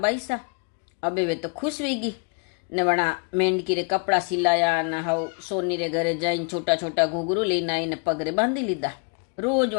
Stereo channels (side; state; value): right; quieter; 36.8 dB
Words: अबे वे तो खुश हुई गई ने वणा मेंढकी रे कपड़ा सिलाया ने हाउ सोनी रे घरे जाइन छोटा छोटा घूघरू लईने आई ने पगरे बांधी लीधा। रोज